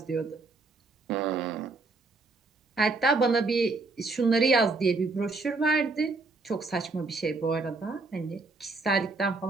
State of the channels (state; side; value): quieter; left; 3.6 dB